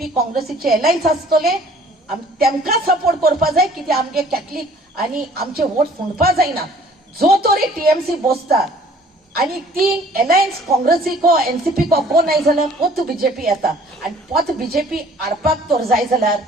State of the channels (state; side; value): normal; both; correlation 0.54